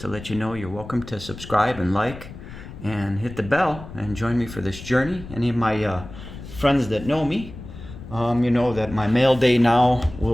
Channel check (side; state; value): left; noise; rumble, 13 dB below the sound